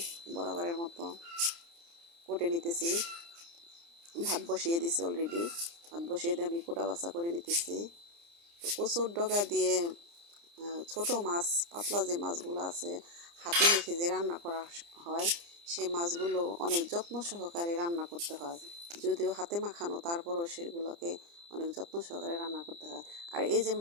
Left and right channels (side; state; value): left; late; 29 ms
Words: বরাবরের মতো, কোটে নিতেছি, ভাত বসিয়ে দিছি অলরেডি, ভাত বসিয়ে দিয়ে আমি কোটা বাছা করে নিতেছি। তো কচুর ডগা দিয়ে ছোটো মাছ, পাতলা যে মাছগুলো আছে, হাতে মেখে যে রান্না করা হয়, সেই মাছগুলো অনেক যত্ন সহকারে রান্না করতে হয়। যদিও হাতে মাখানো, তারপরও সেগুলোকে অনেক যত্ন সহকারে রান্না করতে হয়। আর এই যে